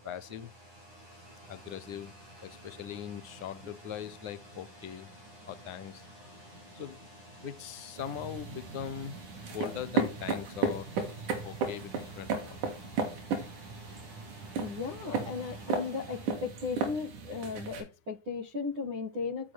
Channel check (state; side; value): late; left; 10 ms